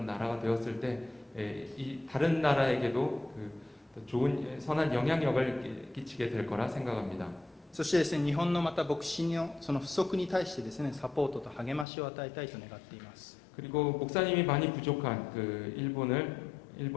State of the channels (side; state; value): right; drops out; at 11.9 s